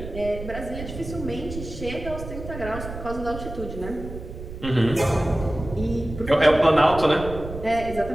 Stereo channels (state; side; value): noise; right; rumble, 10 dB below the sound